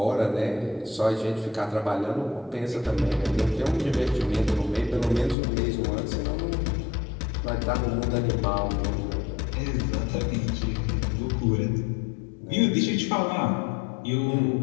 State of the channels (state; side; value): drops out; right; at 5.4 s